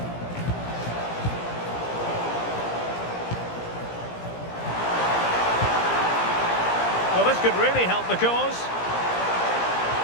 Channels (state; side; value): late; right; 17 ms